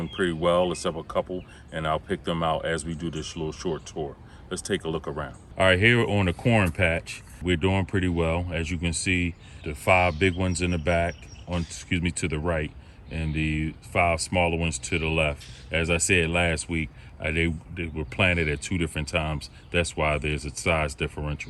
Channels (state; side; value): identical; both; correlation 1.00